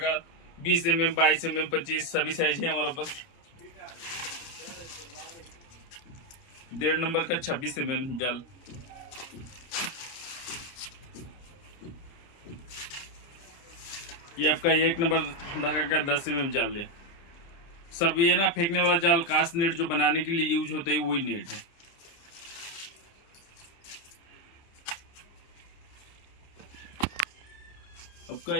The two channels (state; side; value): late; right; 30 ms